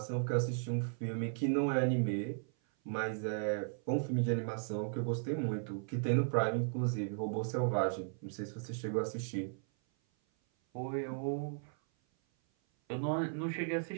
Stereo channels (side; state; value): left; silent; 54 dB below the other